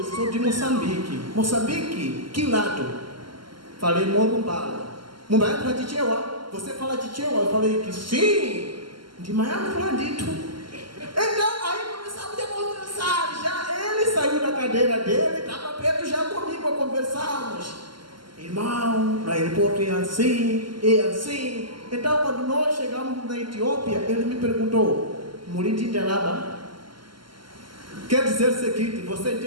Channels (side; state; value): left; late; 0.72 ms